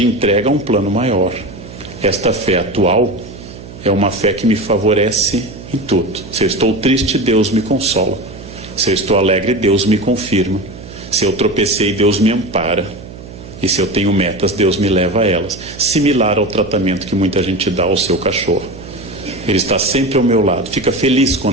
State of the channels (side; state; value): right; noise; hum, 15 dB below the sound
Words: entrega a um plano maior. Esta fé atual é uma fé que me favorece em tudo. Se eu estou triste, Deus me consola. Se eu estou alegre, Deus me confirma. Se eu tropecei, Deus me ampara. E se eu tenho metas, Deus me leva a elas. Similar ao tratamento que muita gente dá ao seu cachorro. Ele está sempre ao meu lado. Fica feliz